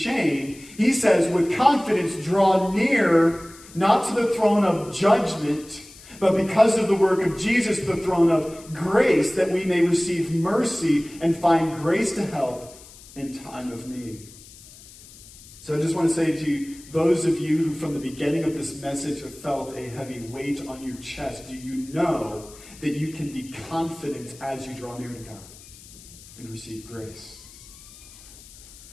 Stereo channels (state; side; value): noise; left; hiss, 20 dB below the sound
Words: He says, with confidence, draw near, not to the throne of judgment, but because of the work of Jesus, the throne of grace, that we may receive mercy and find grace to help in time of need. So I just want to say to you, those of you who from the beginning of this message have felt a heavy weight on your chest, do you know that you can be confident as you draw near to God and receive grace?